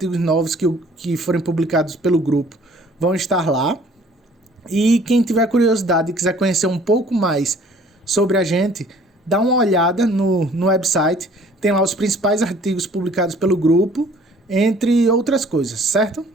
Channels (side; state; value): both; normal; correlation 0.55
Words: novos que forem publicados pelo grupo vão estar lá. E quem tiver curiosidade e quiser conhecer um pouco mais sobre a gente, dá uma olhada no website, tem lá os principais artigos publicados pelo grupo, entre outras coisas, certo?